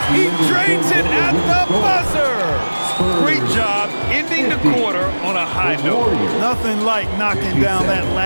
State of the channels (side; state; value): both; inverted; correlation -1.00